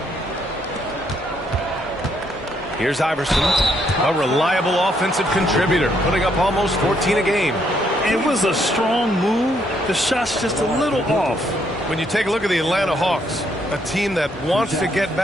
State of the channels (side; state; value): both; normal; correlation 0.72